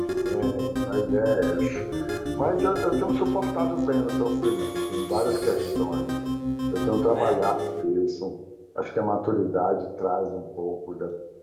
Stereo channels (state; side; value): identical; both; correlation 1.00